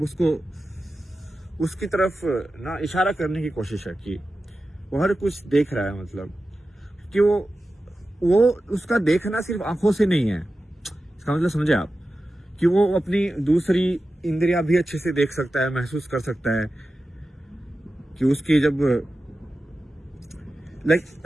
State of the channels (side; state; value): both; normal; correlation 0.93